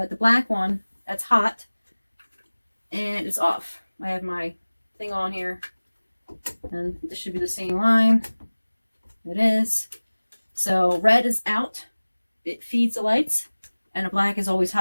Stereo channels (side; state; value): both; inverted; correlation -1.00